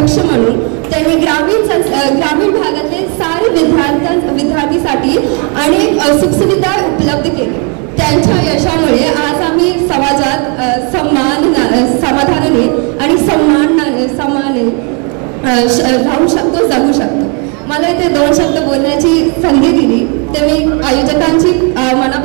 म्हणून त्यांनी ग्रामीण भागातले सारे विद्यार्थीसाठी अनेक सुखसुविधा उपलब्ध केली. त्यांच्या यशामुळे आज आम्ही समाजात समाधानाने आणि सन्मानाने राहू शकतो, जगू शकतो. मला इथे 2 शब्द बोलण्याची संधी दिली ते मी आयोजकांची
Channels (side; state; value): left; quieter; 35.9 dB